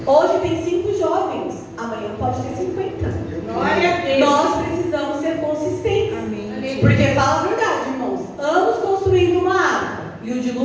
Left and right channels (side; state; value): both; identical; correlation 1.00